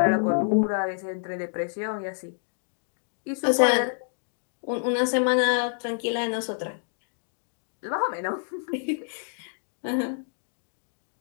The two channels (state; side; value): silent; right; digital silence